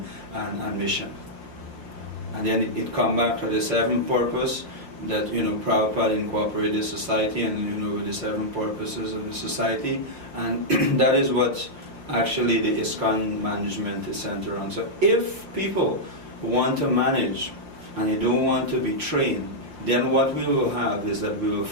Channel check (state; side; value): late; left; 5.7 ms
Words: mission. And then it comes back to the seventh purpose that Prabhupada incorporated society and with the seven purposes of the society, and that is what actually the ISKCON management is centered on. So if people want to manage and you don't want to be trained, then what we will have is that we will